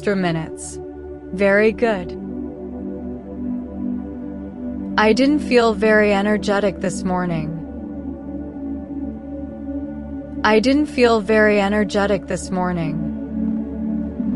minutes. Very good. I didn't feel very energetic this morning. I didn't feel very energetic this morning.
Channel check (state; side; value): identical; both; correlation 1.00